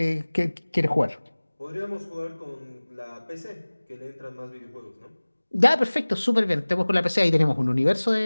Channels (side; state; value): both; inverted; correlation -1.00